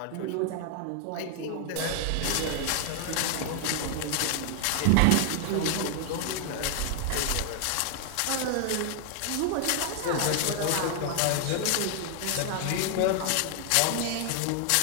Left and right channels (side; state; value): both; different; correlation 0.00